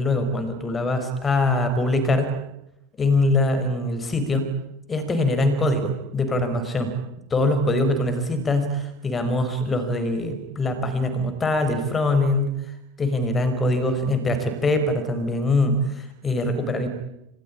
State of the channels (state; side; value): normal; both; correlation 0.53